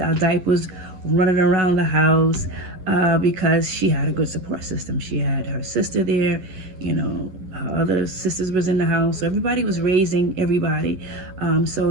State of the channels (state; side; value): late; left; 11 ms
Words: our diapers running around the house because she had a good support system. She had her sister there, her other sisters was in the house, so everybody was raising everybody.